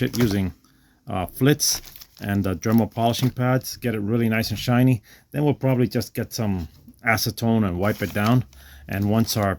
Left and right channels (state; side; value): identical; both; correlation 1.00